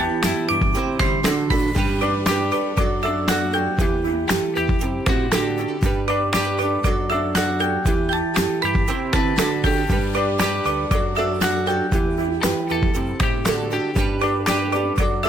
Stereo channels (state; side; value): normal; both; correlation 0.77